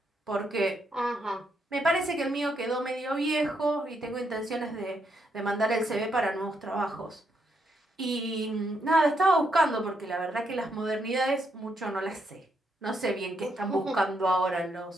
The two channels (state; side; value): normal; both; correlation 0.78